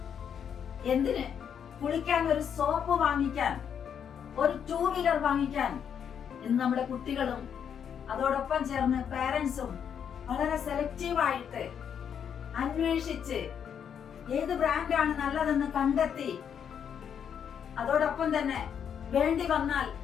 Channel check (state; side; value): quieter; right; 8.0 dB